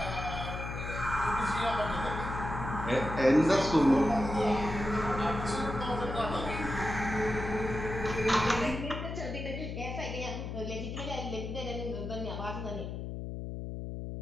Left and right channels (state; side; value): noise; left; hum, 6 dB below the sound